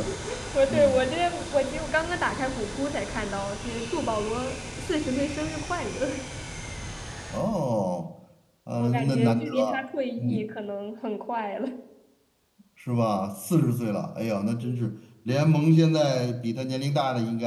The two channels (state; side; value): identical; both; correlation 1.00